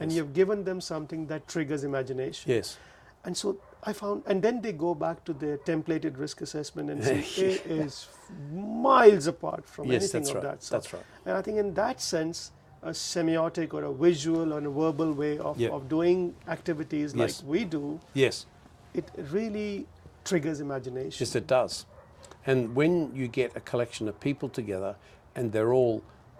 you have given them something that triggers imagination. Yes. And so I found, and then they go back to their templated risk assessment and see it is miles apart from Yes, anything that's of right. that sort. That's right. And I think in that sense, a semiotic or a visual or a verbal way of, Yeah. of doing activities like Yes. we do, Yes. it really triggers imagination. Yes, it does. And when you get a collection of people together and they're all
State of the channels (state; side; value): identical; both; correlation 1.00